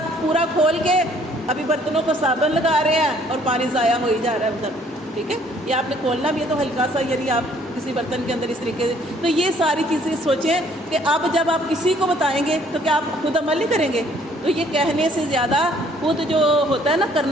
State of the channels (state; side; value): normal; both; correlation 0.61